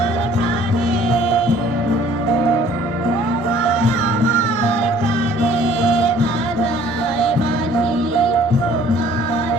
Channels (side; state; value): both; normal; correlation 0.55